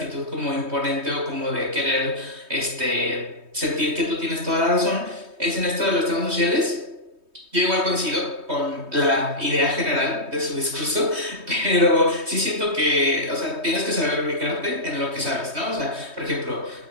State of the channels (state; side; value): late; left; 3.2 ms